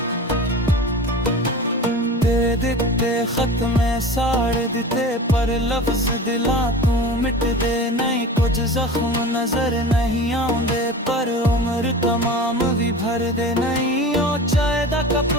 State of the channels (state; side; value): normal; both; correlation 0.34